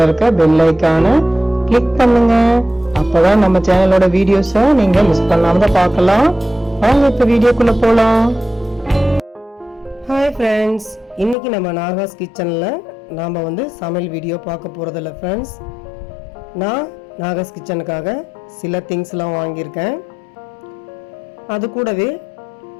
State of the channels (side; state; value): right; drops out; at 11.4 s